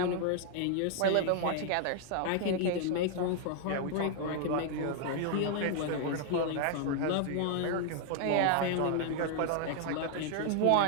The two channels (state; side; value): different; both; correlation 0.00